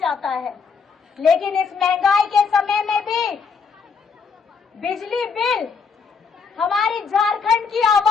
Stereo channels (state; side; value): quieter; right; 5.5 dB